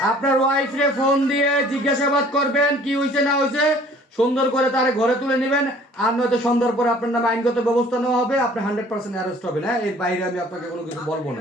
আপনার ওয়াইফরে ফোন দিয়ে জিজ্ঞাসাবাদ করবেন কি হয়েছে না হয়েছে, সুন্দর করে তারে ঘরে তুলে নেবেন, আর নয়তো সন্ধ্যার পরে আপনার নামে আইনগত ব্যবস্থা নেওয়া হবে, আপনি 100% অ্যারেস্ট হবেন। হ্যাঁ, এর বাইরে আমি আপনাকে কোনো কিছু বলবো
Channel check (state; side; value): normal; both; correlation 0.53